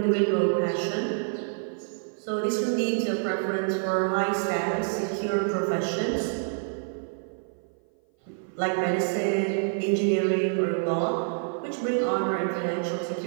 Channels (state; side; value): silent; left; 56 dB below the other